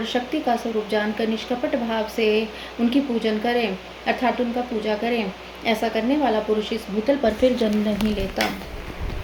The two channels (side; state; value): both; identical; correlation 1.00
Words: शक्ति का स्वरूप जानकर निष्कपट भाव से उनकी पूजन करें अर्थात उनका पूजा करें। ऐसा करने वाला पुरुष इस भूतल पर फिर जन्म नहीं लेता।